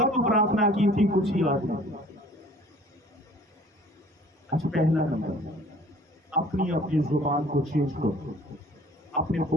प्रार्थना की थी कुछ ही याद नहीं। अच्छा, पहला नंबर, अपनी अपनी जुबान को चेंज करो, अपने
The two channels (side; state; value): both; normal; correlation 0.52